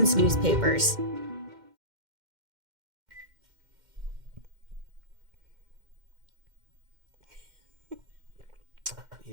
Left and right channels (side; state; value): left; late; 2.1 ms